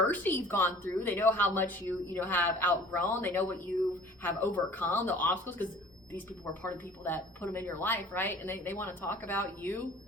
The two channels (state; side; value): normal; both; correlation 0.48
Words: you've gone through. They know how much you have outgrown. They know what you have overcome, the obstacles, because these people were part of the people that put them in your life, right? And they want to talk about you.